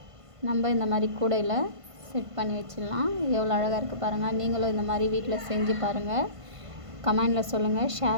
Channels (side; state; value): left; late; 1.5 ms